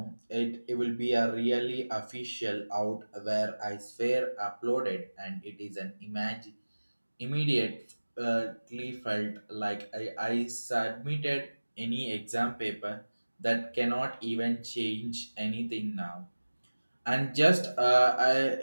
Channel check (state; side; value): inverted; both; correlation -1.00